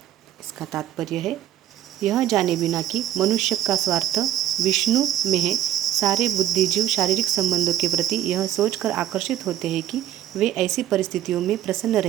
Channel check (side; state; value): left; quieter; 11.7 dB